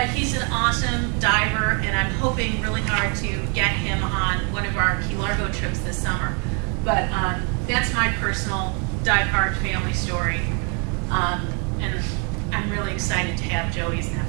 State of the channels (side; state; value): left; quieter; 36.4 dB